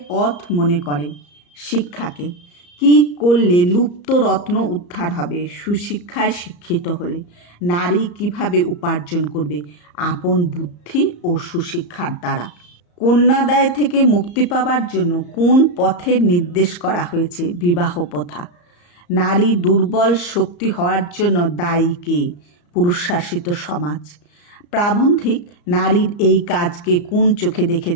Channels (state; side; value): late; right; 34 ms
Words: পথ মনে করে? শিক্ষাকে। কি করলে লুপ্ত রত্ন উদ্ধার হবে? সুশিক্ষায় শিক্ষিত হলে। নারী কিভাবে উপার্জন করবে? আপন বুদ্ধি ও সুশিক্ষার দ্বারা। কন্যাদায় থেকে মুক্তি পাবার জন্য কোন পথের নির্দেশ করা হয়েছে? বিবাহ প্রথা। নারী দুর্বল শক্তি হওয়ার জন্য দায়ী কে? পুরুষশাসিত সমাজ। প্রাবন্ধিক নারীর এই কাজকে কোন চোখে